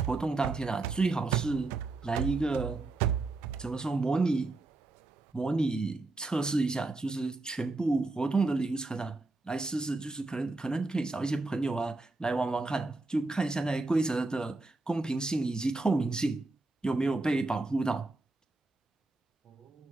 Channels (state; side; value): quieter; left; 3.2 dB